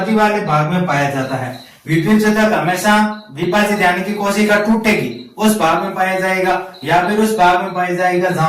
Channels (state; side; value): identical; both; correlation 1.00